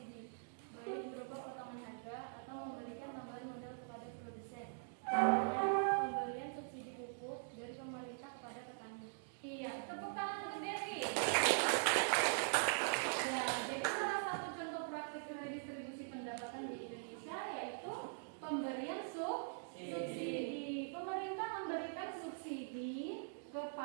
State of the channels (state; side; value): silent; left; digital silence